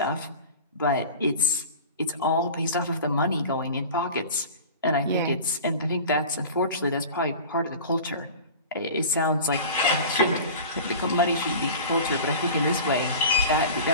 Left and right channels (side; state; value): both; inverted; correlation -0.36